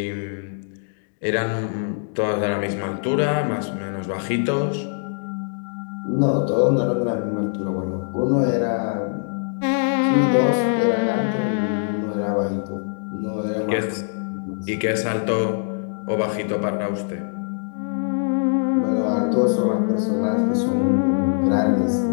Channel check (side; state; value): right; silent; digital silence